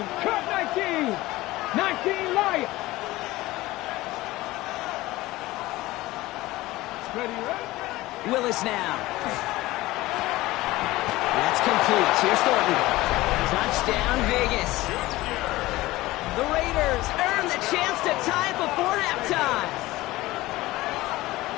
Cut 19. 19 Lions. Ready, right? Willis now. That's complete. Here's Thornton. Touchdown, Vegas. The Raiders earn the chance to tie before halftime.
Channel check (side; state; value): right; quieter; 18.5 dB